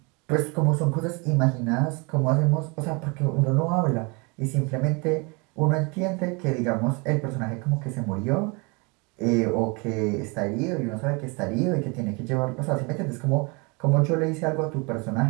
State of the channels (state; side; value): quieter; left; 29.8 dB